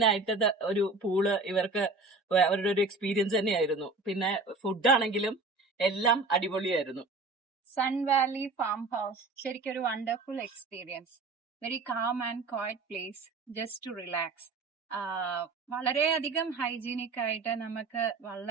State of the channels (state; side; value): quieter; left; 3.6 dB